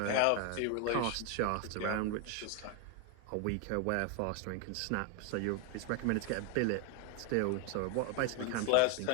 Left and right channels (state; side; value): different; both; correlation 0.01